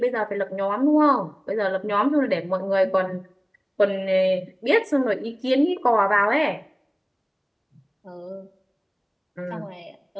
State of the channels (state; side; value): identical; both; correlation 1.00